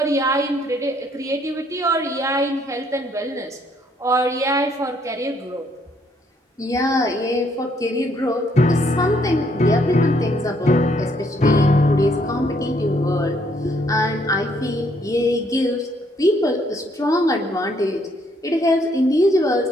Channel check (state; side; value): normal; both; correlation 0.69